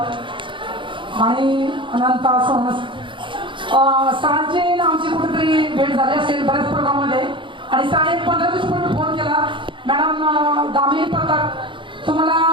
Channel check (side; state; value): left; late; 0.24 ms